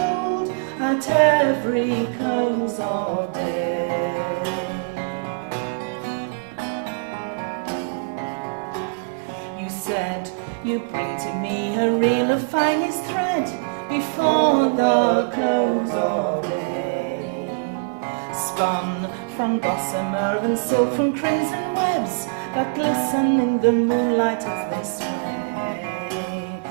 at every close of day. You said you'd bring to me a reel of finest thread before the close of day, spun from gossamer and silk from crimson webs that glisten in the moonlight as they sway.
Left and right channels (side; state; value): left; quieter; 34.9 dB